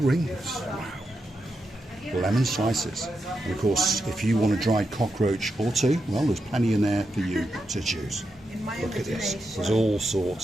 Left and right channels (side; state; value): both; normal; correlation 0.86